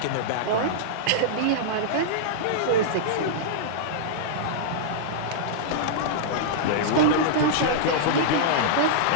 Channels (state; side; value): different; both; correlation -0.02